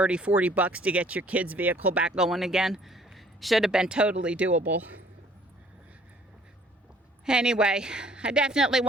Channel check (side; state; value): both; normal; correlation 0.58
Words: 40 bucks to get your kid's vehicle back going again. Should have been totally doable. Anyway, I definitely